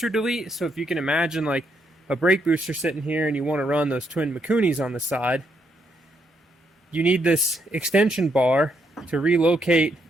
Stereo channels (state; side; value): normal; both; correlation 0.76